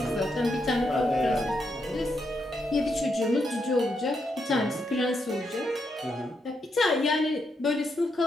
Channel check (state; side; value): normal; both; correlation 0.81